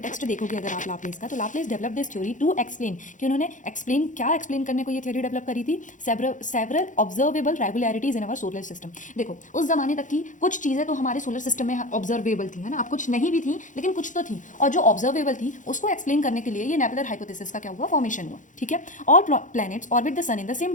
देखोगे अगर आप लाप्लेस का, तो Laplace develop this theory to explain कि उन्होंने एक्सप्लेन करने को ये थ्योरी डेवलप करी थी, several observable regularities in our solar system. देखो, उस जमाने तक की कुछ चीज़ें तो हमारे सोलर सिस्टम में ऑब्जर्वेबल थी, है ना। अब कुछ नहीं भी थी लेकिन कुछ तो थी, और जो ऑब्जर्वेबल थी उसको एक्सप्लेन करने के लिए ये नेबुलर हाइपोथेसिस का क्या हुआ, फॉर्मेशन हुआ। ठीक है, all planets orbit the sun in the same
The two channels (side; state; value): right; late; 0.37 ms